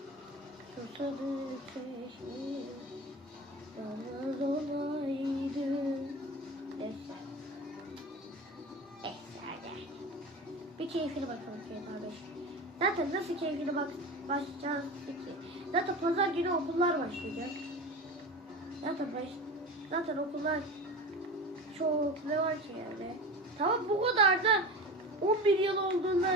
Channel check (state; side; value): normal; both; correlation 0.30